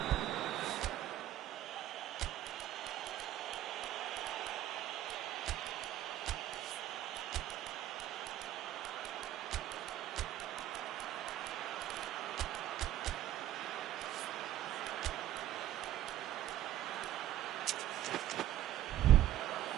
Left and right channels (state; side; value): quieter; left; 13.2 dB